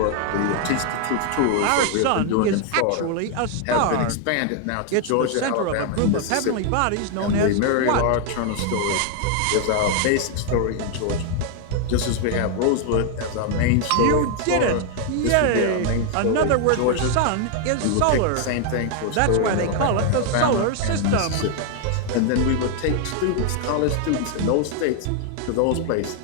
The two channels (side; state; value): both; different; correlation 0.00